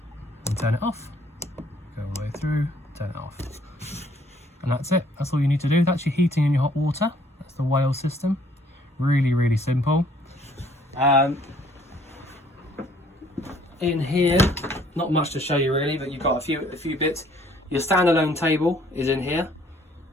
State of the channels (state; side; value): normal; both; correlation 0.61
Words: and turn it off. Go all the way through, turn it off. And that's it. That's all you need to do. That's your heating and your hot water. That's the whale system. Really simple. In here, not much to show you really, but you've got a few bits. Your standalone table is in here.